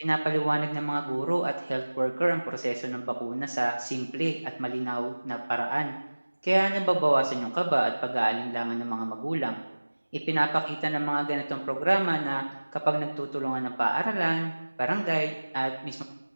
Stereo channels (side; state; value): both; inverted; correlation -1.00